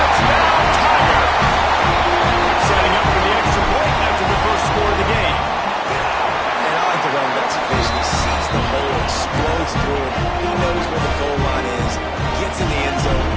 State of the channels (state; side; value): identical; both; correlation 1.00